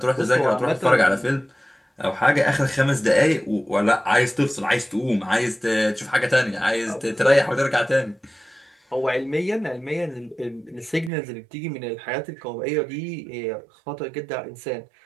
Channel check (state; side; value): drops out; left; at 11.1 s